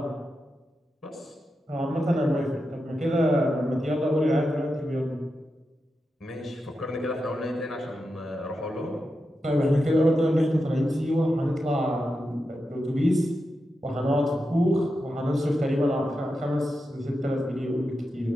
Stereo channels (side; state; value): both; normal; correlation 0.89